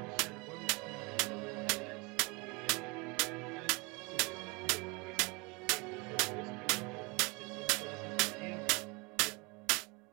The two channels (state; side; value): quieter; left; 27.7 dB